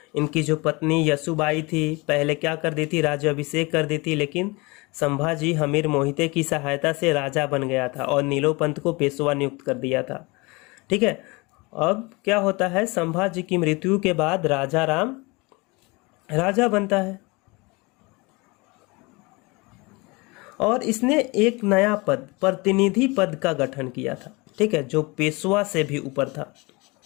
इनकी जो पत्नी यशुबाई थी पहले क्या कर दी थी, राज्याभिषेक कर दी थी, लेकिन संभाजी हमीर मोहिते की सहायता से राजा बन गया था और नीलोपंत को पेशवा नियुक्त कर दिया था। ठीक है, अब क्या होता है, संभाजी की मृत्यु के बाद राजा राम राजा बनता है और इसने एक नया पद, प्रतिनिधि पद का गठन किया था। ठीक है, जो पेशवा से भी ऊपर था।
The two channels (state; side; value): quieter; right; 25.7 dB